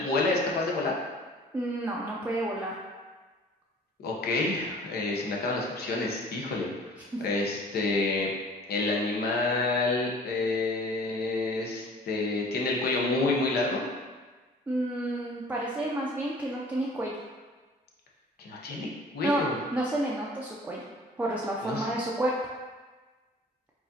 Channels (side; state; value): both; normal; correlation 0.49